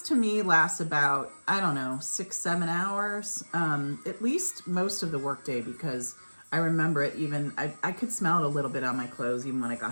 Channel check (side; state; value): both; inverted; correlation -1.00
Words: to me lasts about, I don't know, 6-7 hours, at least most of the workday, because I remember it even, I could smell it a little bit on my clothes even when I